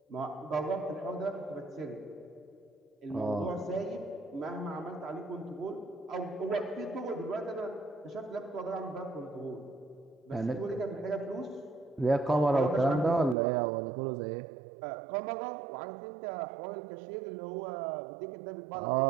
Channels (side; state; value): left; drops out; at 13.4 s